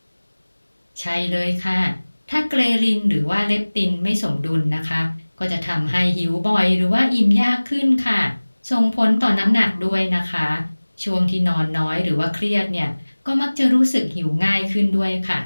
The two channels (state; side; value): inverted; both; correlation -1.00